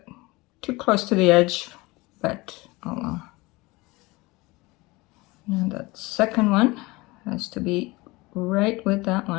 too close to the edge, but oh well. Now that second one has to be right with that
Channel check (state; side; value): quieter; right; 22.6 dB